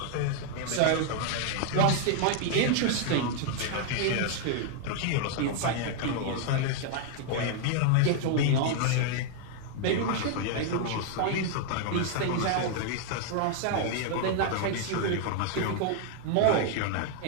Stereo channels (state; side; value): different; both; correlation 0.00